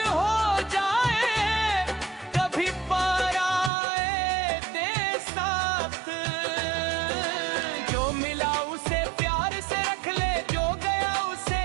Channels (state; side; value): drops out; left; at 3.7 s